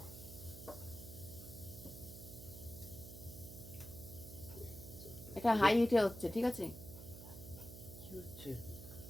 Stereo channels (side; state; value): right; noise; hum, 12 dB below the sound